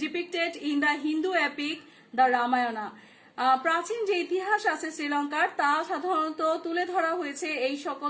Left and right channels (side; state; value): both; identical; correlation 1.00